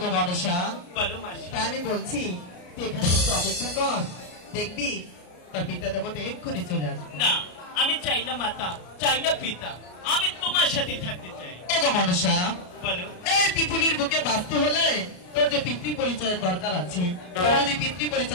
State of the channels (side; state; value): right; late; 33 ms